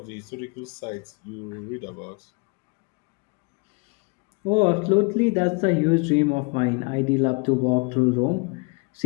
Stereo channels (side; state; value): right; quieter; 30.6 dB